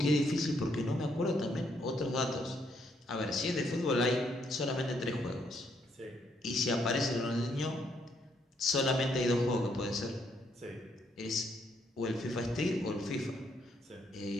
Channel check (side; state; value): both; normal; correlation 0.73